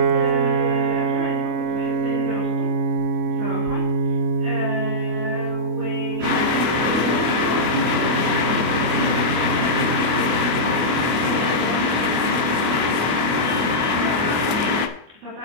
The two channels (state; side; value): late; left; 25 ms